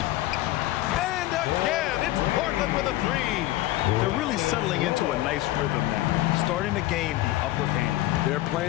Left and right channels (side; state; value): right; quieter; 16.3 dB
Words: And again, it's Portland with a 3. They're really settling into a nice rhythm now, starting to gain the upper hand. They're